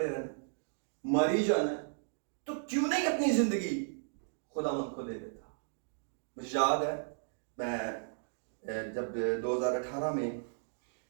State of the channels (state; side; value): silent; left; digital silence